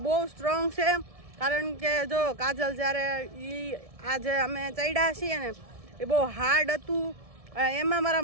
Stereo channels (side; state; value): left; late; 1.7 ms